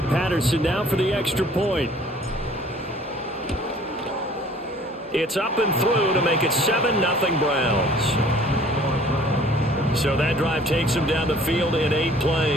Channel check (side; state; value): both; normal; correlation 0.53